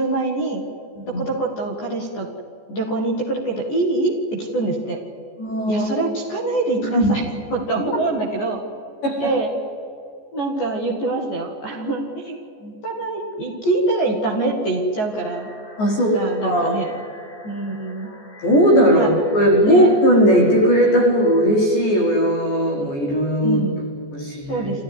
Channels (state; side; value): late; right; 14 ms